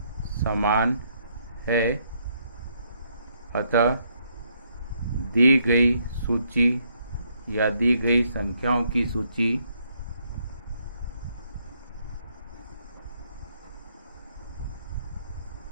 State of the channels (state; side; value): inverted; both; correlation -0.72